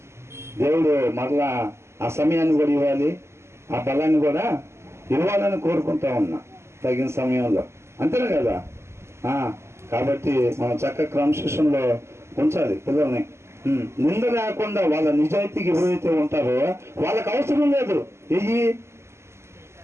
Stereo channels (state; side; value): late; left; 0.13 ms